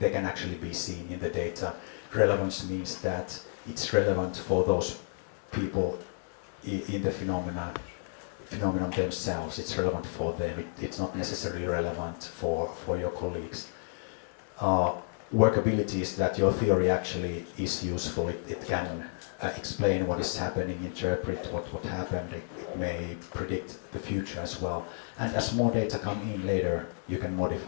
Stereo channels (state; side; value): silent; right; 57 dB below the other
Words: can actually be seen in the data. Relevance means that it's relevant for those people in the phenomenon themselves. It's relevant for them. It's not necessarily relevant for your colleagues. Workability is that your theory actually is useful. It can explain what is happening, interpret what happened. It may predict the future as well. And as more data come in later, you can